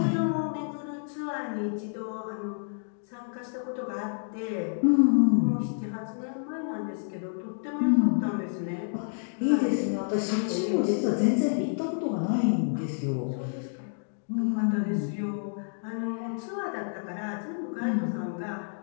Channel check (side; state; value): right; silent; digital silence